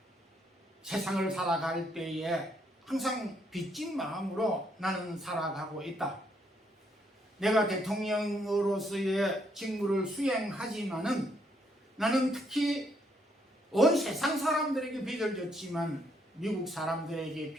세상을 살아갈 때에 항상 빚진 마음으로 나는 살아가고 있다. 내가 대통령으로서의 직무를 수행하지만은 나는 특히 온 세상 사람들에게 빚을 졌지만 미국 사람들에게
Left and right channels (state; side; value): normal; both; correlation 0.72